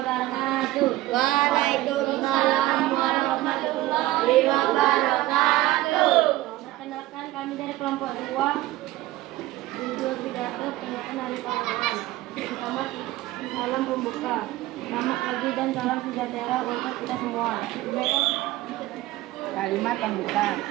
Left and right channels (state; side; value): quieter; left; 16.8 dB